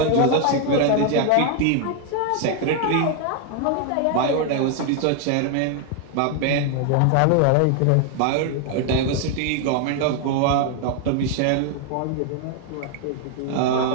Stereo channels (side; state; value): both; different; correlation 0.00